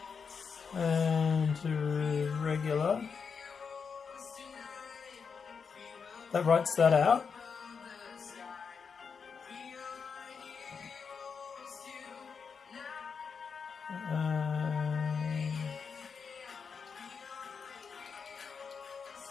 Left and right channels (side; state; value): right; quieter; 5.9 dB